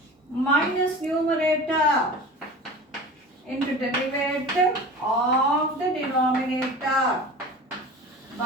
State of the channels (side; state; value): both; normal; correlation 0.36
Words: minus numerator into derivative of the denominator